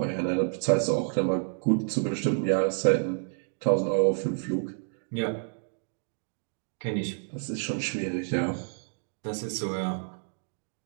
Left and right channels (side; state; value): left; silent; 58 dB below the other